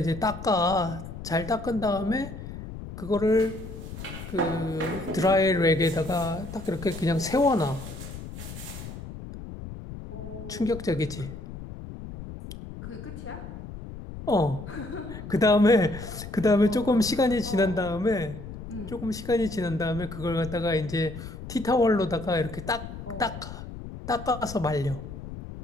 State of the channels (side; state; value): left; noise; rumble, 11 dB below the sound